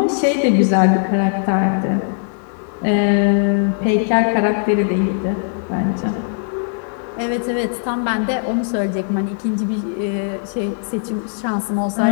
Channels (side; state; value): right; silent; 67 dB below the other